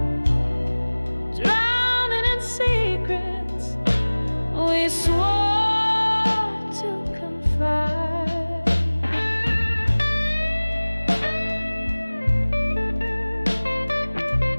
drowning in secrets we swore to confide.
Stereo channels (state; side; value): inverted; both; correlation -1.00